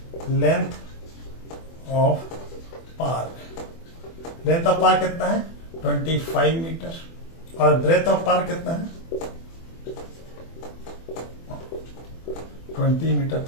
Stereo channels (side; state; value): right; late; 24 ms